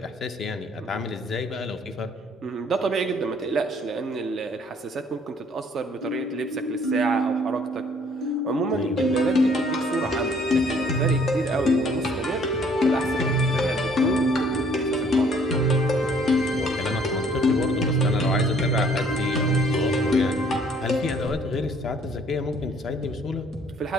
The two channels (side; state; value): both; normal; correlation 0.60